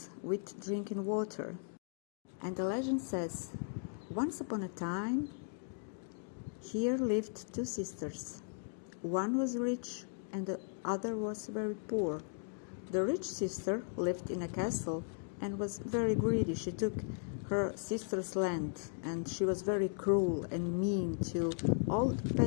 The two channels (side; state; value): right; silent; digital silence